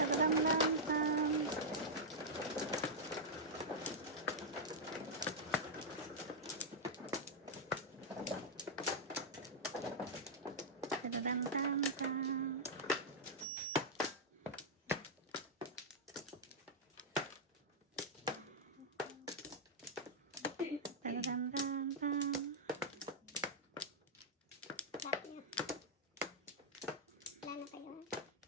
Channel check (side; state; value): both; normal; correlation -0.05